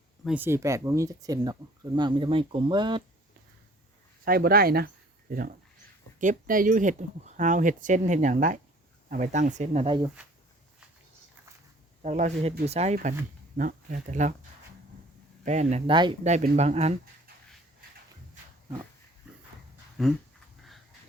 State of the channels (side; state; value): both; normal; correlation 0.53